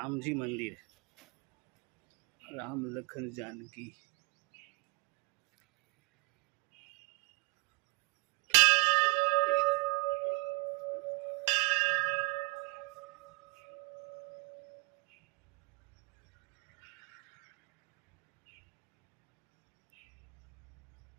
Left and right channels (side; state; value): left; quieter; 30.7 dB